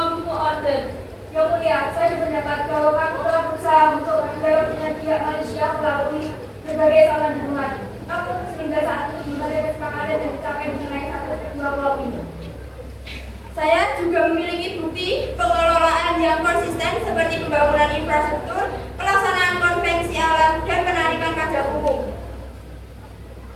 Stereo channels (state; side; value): identical; both; correlation 1.00